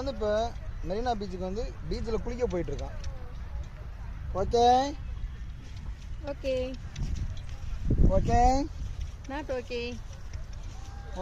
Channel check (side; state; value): both; identical; correlation 1.00